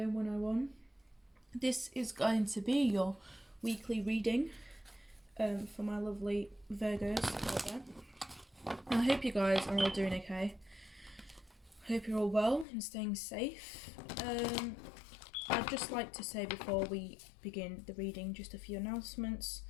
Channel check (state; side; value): drops out; right; at 12.7 s